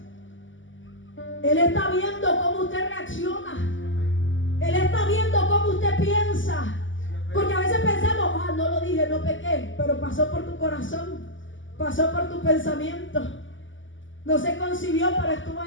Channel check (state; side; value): late; right; 0.56 ms